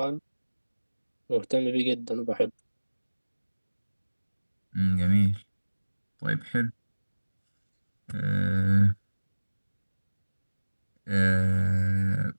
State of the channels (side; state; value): both; inverted; correlation -1.00